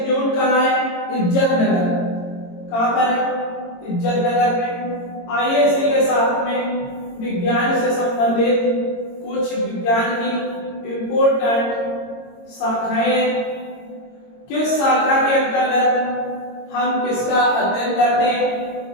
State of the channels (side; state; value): right; late; 22 ms